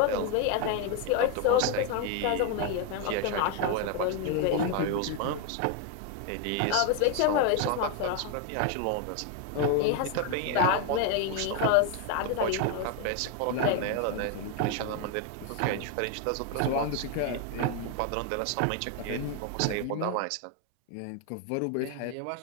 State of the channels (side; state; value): both; different; correlation 0.01